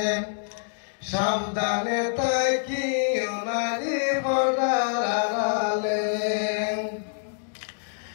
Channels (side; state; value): right; silent; digital silence